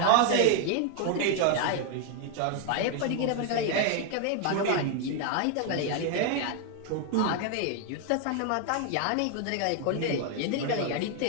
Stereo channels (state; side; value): different; both; correlation 0.00